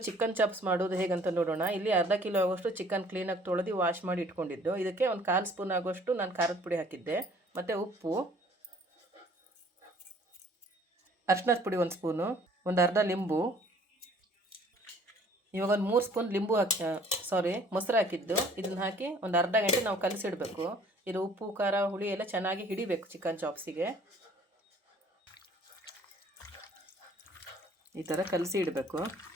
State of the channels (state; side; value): normal; both; correlation 0.55